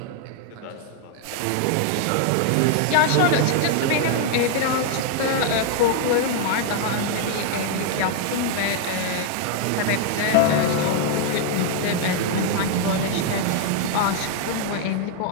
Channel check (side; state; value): both; different; correlation 0.00